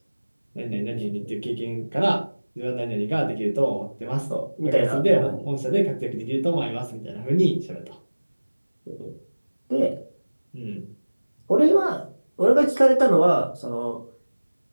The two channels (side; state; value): both; inverted; correlation -1.00